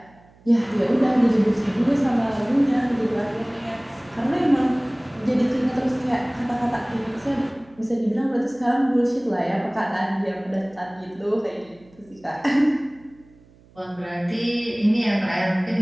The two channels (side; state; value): right; noise; hum, 28 dB below the sound